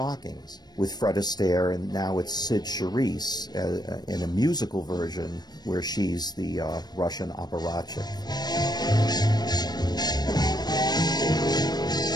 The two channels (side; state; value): right; late; 0.19 ms